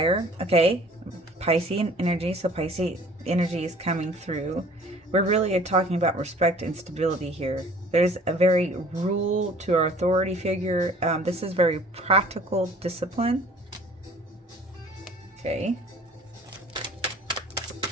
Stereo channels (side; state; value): both; normal; correlation 0.51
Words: Okay. Piscean energy. So Piscean energy is coming through. We're really talking about respect and stability here. There's a very rule to our authority figure. This is very practical discipline. Okay.